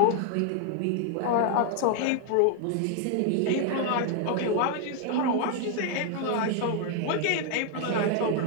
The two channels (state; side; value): different; both; correlation 0.00